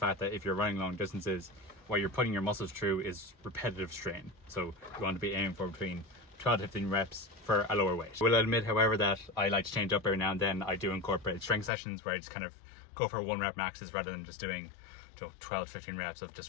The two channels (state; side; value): drops out; right; at 11.7 s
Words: that if you're running long distances, what you're putting your muscles through is repetitive strain. So you want to be aiming for between 12 to 15 reps for a lower weight. I will admit, however, that I like to change up every now and then. I do incorporate strength sessions where I just kind of go for 1 rep maxes rather than just doing 12 to 15 reps of just